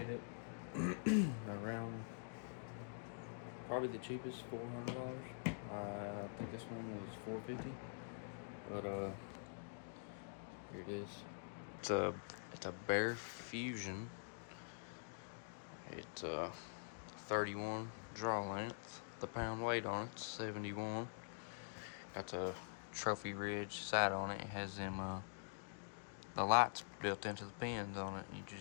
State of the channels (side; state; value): right; silent; digital silence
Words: it around probably the cheapest, $400. I think this one was $450, but here it is. It's a Bear Fusion. It's 31 draw length. The pound weight on it's 71. Got the Trophy Ridge sight on it. It has them the lights built into the pins on it. You